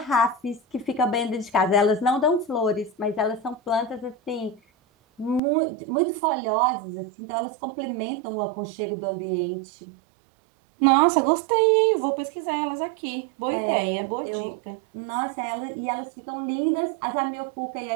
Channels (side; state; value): left; drops out; at 5.4 s